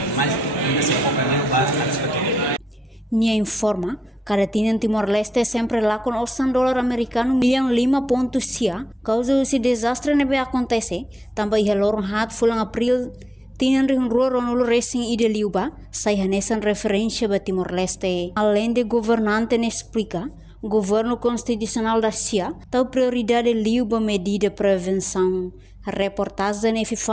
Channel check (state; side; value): normal; both; correlation 0.89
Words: mas ainda se foca no básico antecipatório. Nia informa, Kada Tinan Timor-Leste sempre lá com $8 americano Millaun 5 pontos sia, causa esse desastre nebe acontece, também relógio hat fulang April Tinan rua ronul racing ide liuba, sai hanesan referência ba Timor-Leste. Além de governante explica, governo constitucional da SIA, tal prioridade liuba medida prevenção. Reportagem